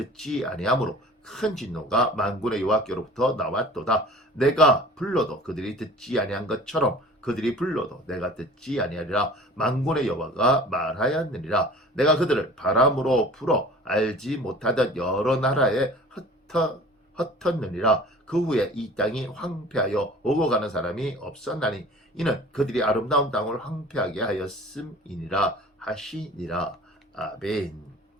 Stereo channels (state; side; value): normal; both; correlation 0.44